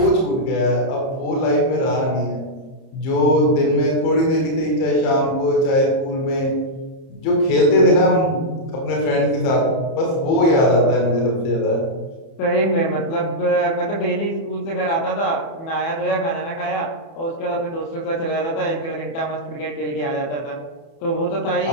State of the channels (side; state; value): right; late; 30 ms